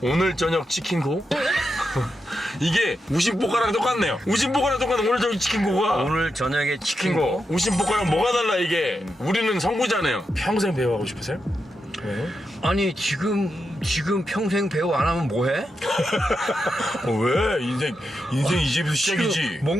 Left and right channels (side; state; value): both; normal; correlation 0.86